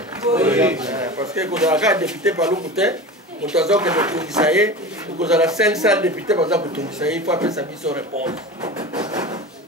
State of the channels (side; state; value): both; normal; correlation 0.30